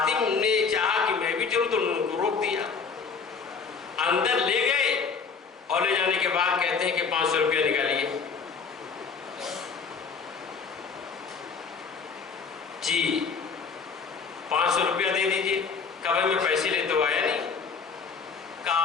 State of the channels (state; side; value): quieter; right; 5.5 dB